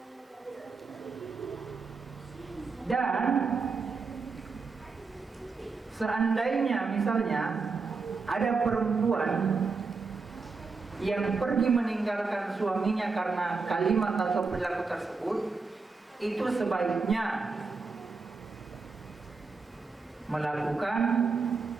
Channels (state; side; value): quieter; left; 4.5 dB